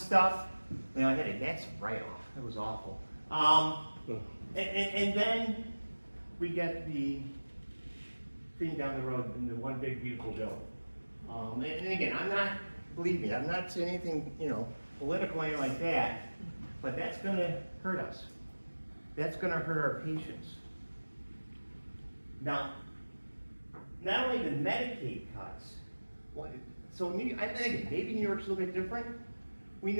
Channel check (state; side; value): inverted; both; correlation -1.00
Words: I had a that's write-off. It was awful. And then we get the thing down the road in the one big beautiful bill. And again, believe me, I'm not saying anything political or anything like that, but that's going to hurt us. That's going to hurt our patients. Now, not only the Medicaid cuts, so I think maybe New York's a little bit different. We